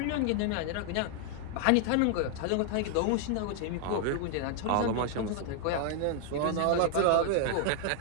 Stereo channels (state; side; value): different; both; correlation 0.00